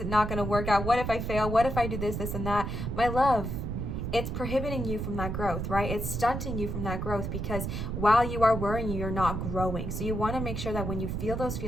not going to work out? What if I fail? What if I do this, this, and that? My love, it's prohibiting you from that growth, right? It's stunting you from that growth because while you are worrying, you're not growing. So you want to make sure that when you feel those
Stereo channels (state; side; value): noise; right; rumble, 3 dB below the sound